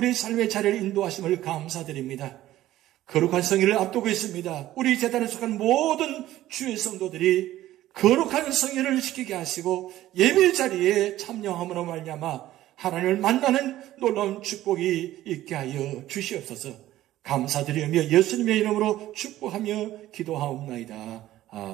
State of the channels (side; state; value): left; quieter; 14.4 dB